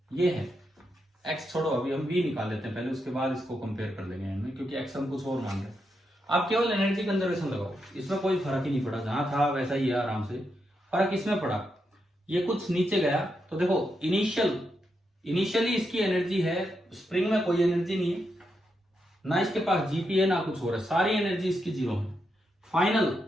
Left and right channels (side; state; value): both; normal; correlation 0.83